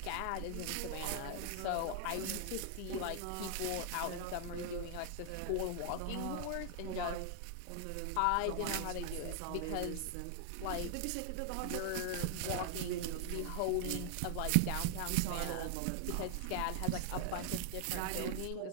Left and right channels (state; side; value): different; both; correlation 0.00